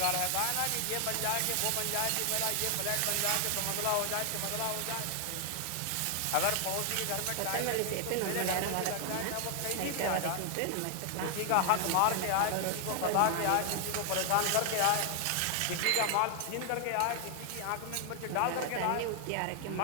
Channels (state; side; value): different; both; correlation 0.00